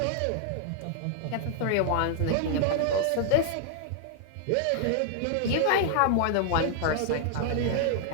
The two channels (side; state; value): both; different; correlation -0.01